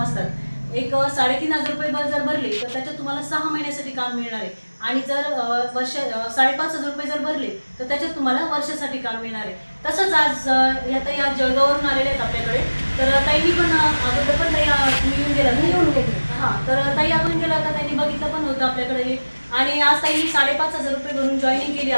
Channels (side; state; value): both; inverted; correlation -1.00